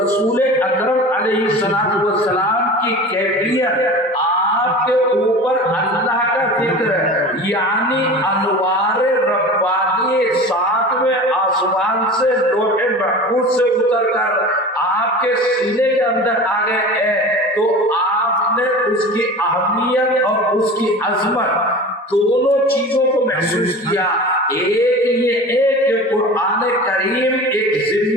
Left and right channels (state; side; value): normal; both; correlation 0.36